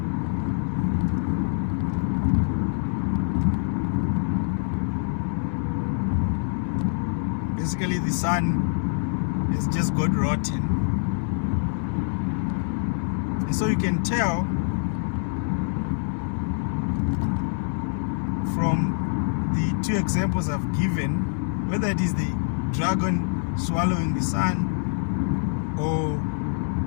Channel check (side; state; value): right; silent; digital silence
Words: Basically, the sun has just got rotten, and so you can tell from the two examples I've given, whether it is the dragon swallowing the sun or